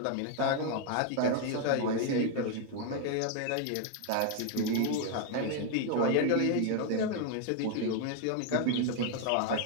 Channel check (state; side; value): different; both; correlation 0.00